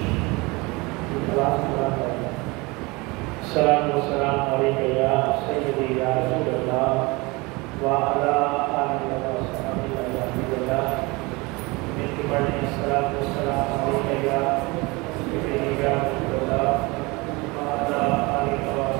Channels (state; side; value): quieter; left; 24.9 dB